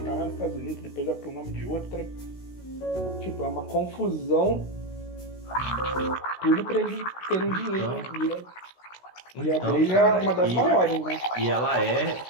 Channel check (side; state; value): right; late; 16 ms